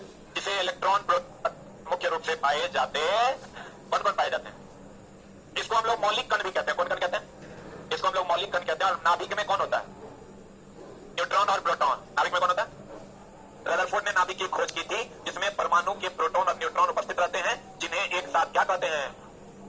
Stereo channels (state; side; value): identical; both; correlation 1.00